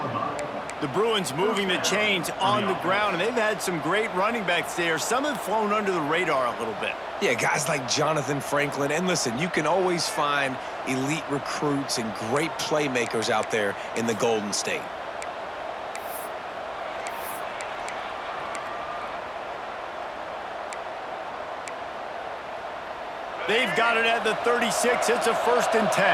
The Bruins moving the chains on the ground, and they've had some great running backs there. Some have flown under the radar a little bit. Yeah, guys like Jonathan Franklin. And listen, you can always find elite recruits and great playmakers out there in the Golden State. They've got it at the 36. It's a 1st and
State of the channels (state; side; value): identical; both; correlation 1.00